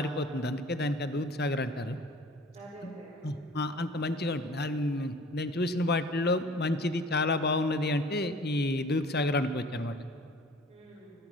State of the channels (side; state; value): both; normal; correlation 0.47